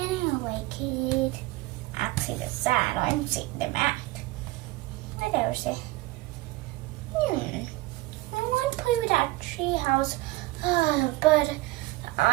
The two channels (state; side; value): quieter; left; 19.4 dB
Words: I like it. Actually, the sand, I'm seeing the mat. What else? I want to play with that tree house, but